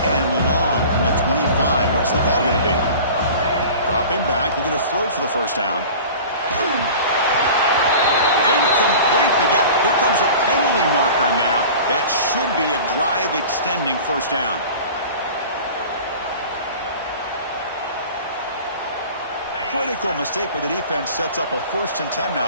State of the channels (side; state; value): both; inverted; correlation -0.40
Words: and long from the 25. What's the call going to be? Dropping back, looking to throw for the first down. Incomplete, but yeah, here comes a penalty marker now. That should be a drive-extending first down. Critical mistake by the defense sets up a 1st and 10 now